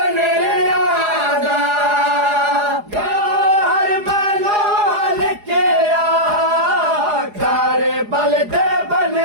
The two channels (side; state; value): left; late; 4.8 ms